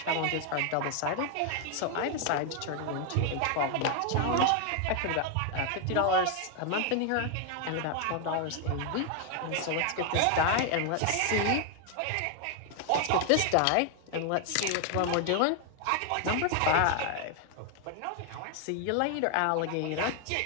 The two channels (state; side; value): different; both; correlation 0.00